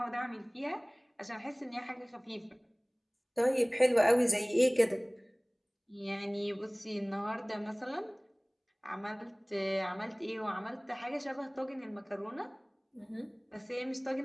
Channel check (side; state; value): both; identical; correlation 1.00